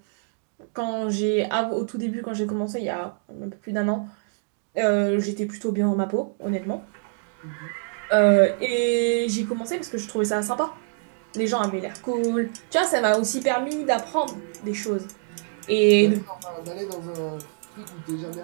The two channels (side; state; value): left; silent; digital silence